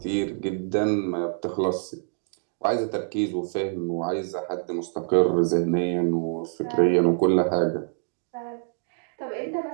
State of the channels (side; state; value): left; silent; digital silence